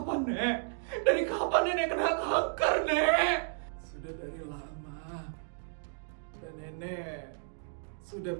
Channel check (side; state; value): left; silent; digital silence